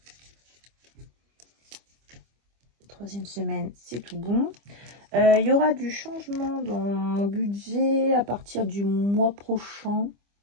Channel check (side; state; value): left; late; 25 ms